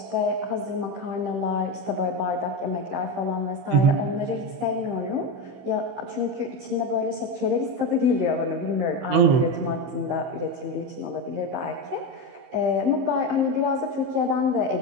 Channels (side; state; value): left; late; 15 ms